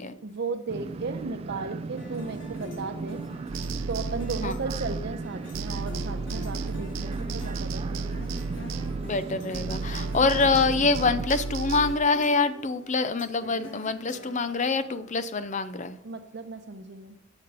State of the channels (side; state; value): both; normal; correlation 0.09